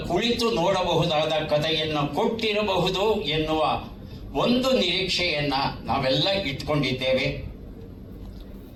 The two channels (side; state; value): both; identical; correlation 1.00